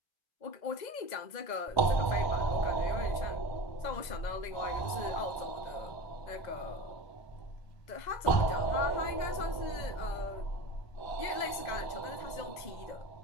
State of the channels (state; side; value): late; right; 2.0 ms